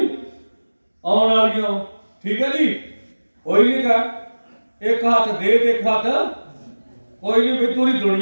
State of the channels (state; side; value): inverted; both; correlation -1.00